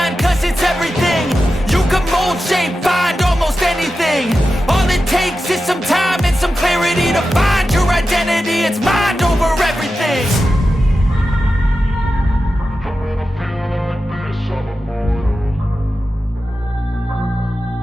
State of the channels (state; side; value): normal; both; correlation 0.92